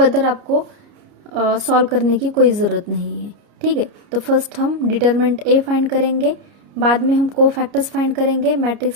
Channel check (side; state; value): left; late; 29 ms